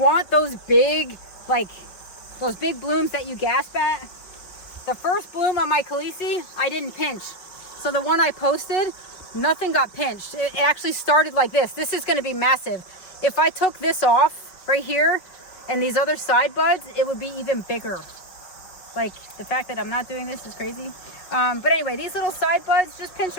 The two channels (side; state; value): right; late; 5.6 ms